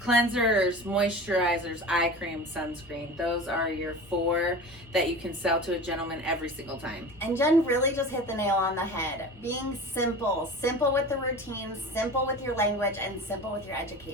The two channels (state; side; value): normal; both; correlation 0.34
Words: moisturizers, eye cream, sunscreen. Those are your 4 that you can sell to a gentleman every single time. And Jen really just hit the nail on the head. Being simple with the routine, simple with your language, and simple with your